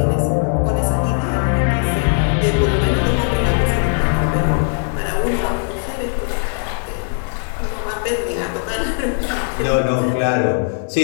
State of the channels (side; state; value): right; silent; digital silence